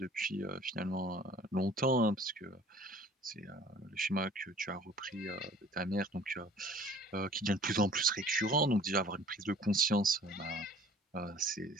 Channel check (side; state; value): both; normal; correlation 0.50